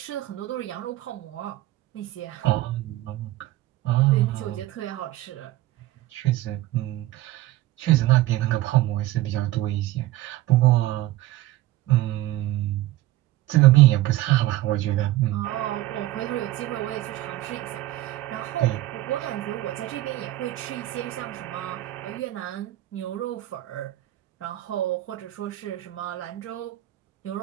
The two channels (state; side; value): quieter; left; 16.2 dB